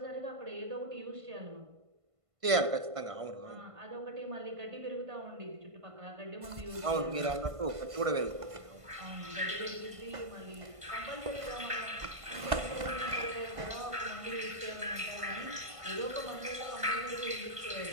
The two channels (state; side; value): late; left; 1.5 ms